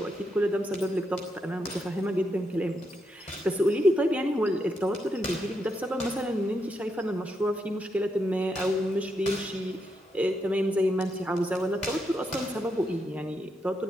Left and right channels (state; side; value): normal; both; correlation 0.81